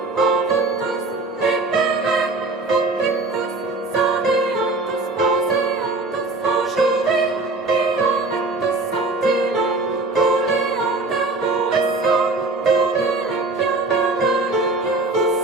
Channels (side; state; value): left; quieter; 3.3 dB